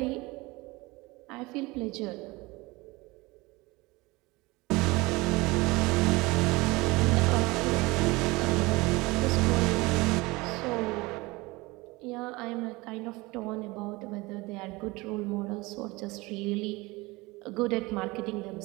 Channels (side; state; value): left; quieter; 22.8 dB